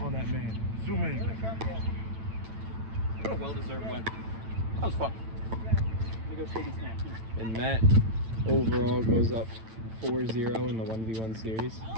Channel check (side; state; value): left; late; 9.0 ms